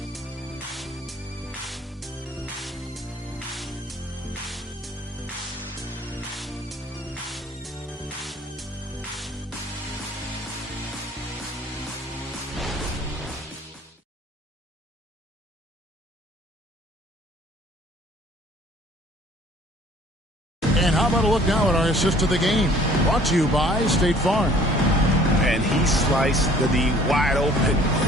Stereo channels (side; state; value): both; normal; correlation 0.55